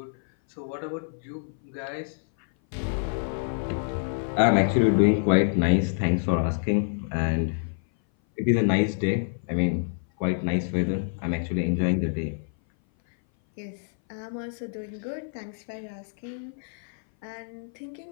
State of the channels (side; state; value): right; silent; 58 dB below the other